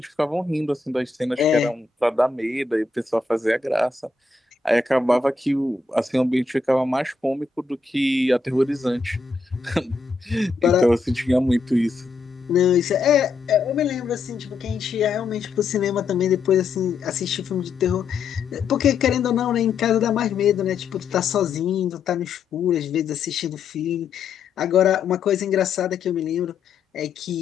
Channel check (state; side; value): quieter; right; 4.5 dB